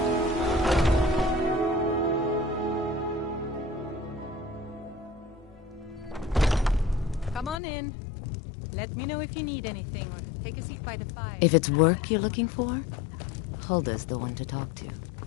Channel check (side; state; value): right; drops out; at 7.6 s